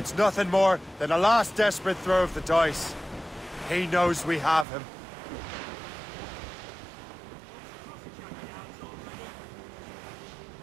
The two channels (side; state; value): left; drops out; at 4.7 s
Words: nothing more than a last desperate throw of the dice. He knows we have him.